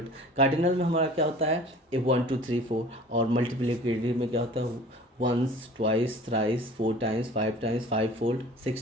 कार्डिनल में हमारा क्या होता है, 1 2 3 4। और मल्टीप्लिकेटिव में क्या होता है, once, twice, thrice, 4 times, 5 times, 5 fold,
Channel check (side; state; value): both; normal; correlation 0.45